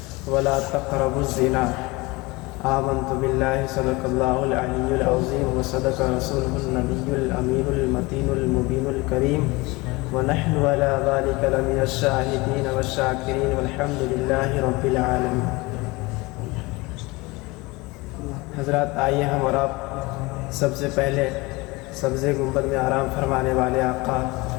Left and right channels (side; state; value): right; quieter; 23.6 dB